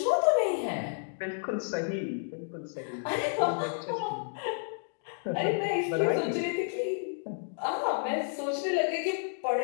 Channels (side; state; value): right; silent; digital silence